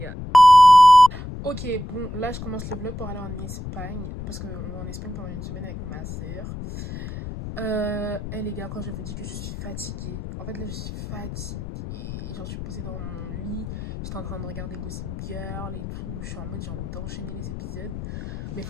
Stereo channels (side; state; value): left; noise; rumble, 9 dB below the sound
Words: Ok, bon, là je commence le vlog pour aller en Espagne. Parce qu'on va en Espagne pendant une semaine avec ma soeur. Les gars, quand je vous dis que je suis fatiguée, en fait là je suis fatiguée. Genre je suis posée dans mon lit, j'étais en train de regarder Gossip Girl et tout. Je suis en mode j'ai envie d'enchaîner les épisodes. Mais il